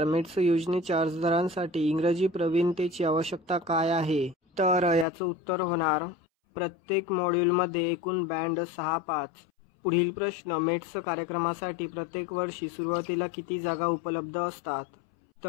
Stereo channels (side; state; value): right; drops out; at 5.1 s